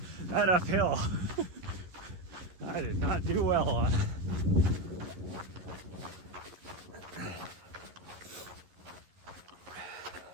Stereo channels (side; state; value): left; late; 11 ms